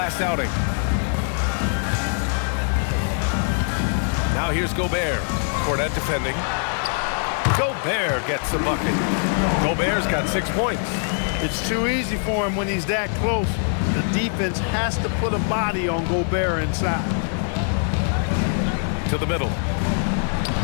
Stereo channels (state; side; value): silent; right; 56 dB below the other